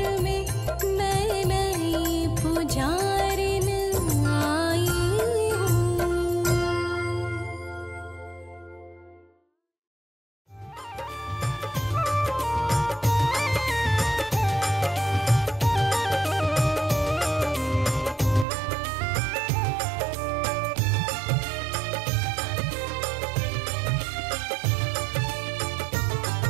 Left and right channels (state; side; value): drops out; left; at 18.4 s